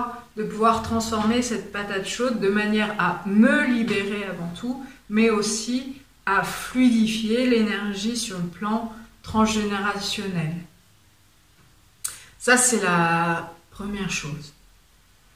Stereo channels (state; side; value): identical; both; correlation 1.00